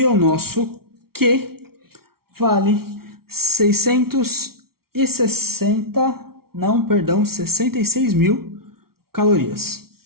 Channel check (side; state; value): left; late; 0.94 ms